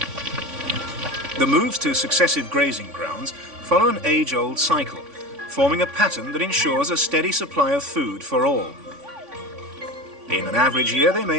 The moves to successive grazing grounds follow an age-old cycle, forming a pattern that ensures a steady supply of food for all. In an average year, they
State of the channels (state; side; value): late; left; 3.5 ms